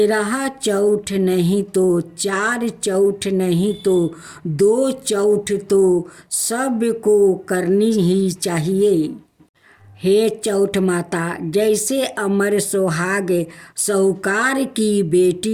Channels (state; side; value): identical; both; correlation 1.00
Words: चौथ नहीं तो 4 चौथ नहीं तो 2 चौथ तो सबको करनी ही चाहिए। हे चौठ माता, जैसे अमर सुहाग साहूकार की